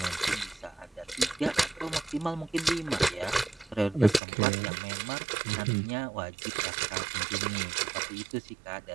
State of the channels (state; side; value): drops out; left; at 4.2 s